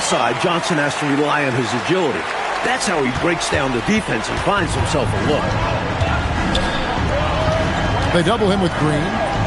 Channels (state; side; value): identical; both; correlation 1.00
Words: Johnson has to rely on his agility. That's how he breaks down the defense and finds himself a look. They double him with Green.